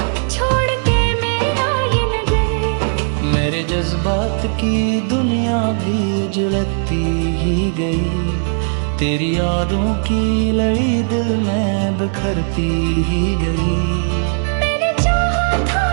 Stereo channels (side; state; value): left; silent; digital silence